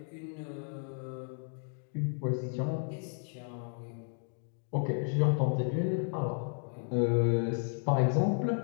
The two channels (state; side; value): silent; right; 56 dB below the other